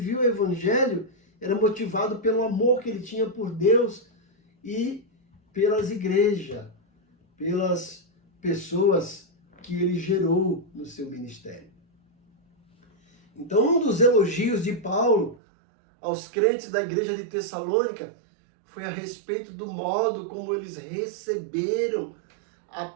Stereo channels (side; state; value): left; drops out; at 15.4 s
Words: o Evangelho era motivado pelo amor que ele tinha por Deus e pelas igrejas, pelas pessoas que ele gerou no seu ministério. Então, um dos elogios de Paulo aos crentes da igreja de Tessalônica foi a respeito do modo como eles receberam a